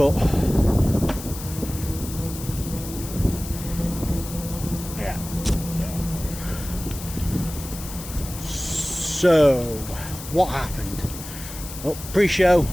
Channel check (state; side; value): noise; left; hiss, 12 dB below the sound